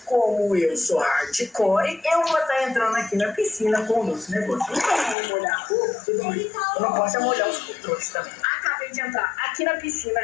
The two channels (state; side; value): drops out; right; at 5.2 s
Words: como eu sou hardcore, eu vou estar entrando aqui na piscina com o nosso negócio. Então eu vou molhar tudo bem. Eu não posso molhar os controles também. Acabei de entrar aqui na piscina.